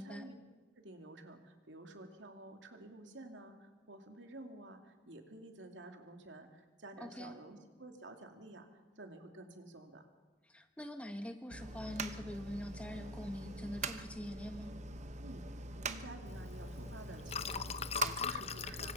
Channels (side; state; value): both; normal; correlation 0.22